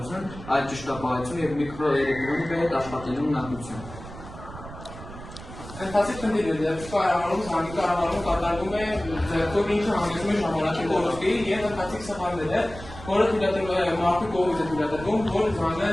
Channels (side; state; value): right; noise; rumble, 14 dB below the sound